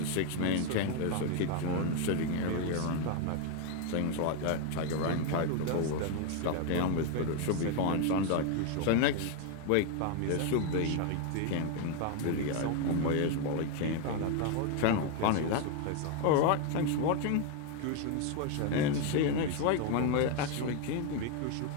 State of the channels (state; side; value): different; both; correlation 0.01